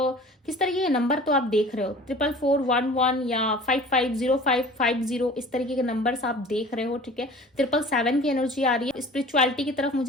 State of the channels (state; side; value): normal; both; correlation 0.44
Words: किस तरीके के नंबर तो आप देख रहे हो, 44411 या 550550, इस तरीके के नंबर्स आप देख रहे हो, ठीक है। 777 की एनर्जी आ रही है, स्पिरिचुअलिटी की तरफ